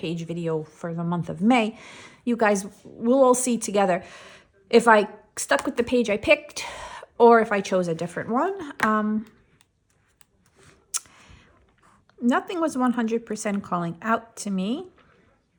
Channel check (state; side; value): identical; both; correlation 1.00